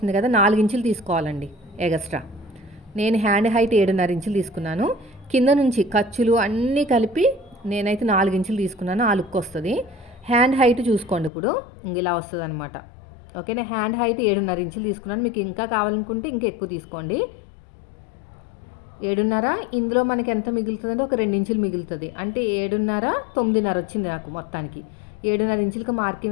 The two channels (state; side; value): drops out; right; at 11.3 s